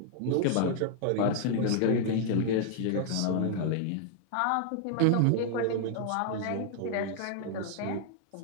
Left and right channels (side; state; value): both; different; correlation -0.01